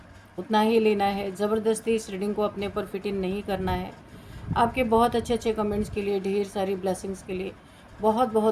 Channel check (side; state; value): both; identical; correlation 1.00